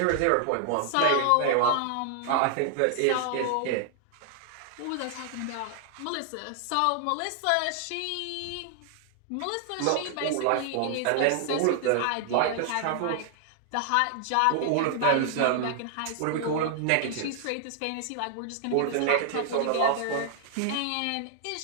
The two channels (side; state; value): both; different; correlation 0.00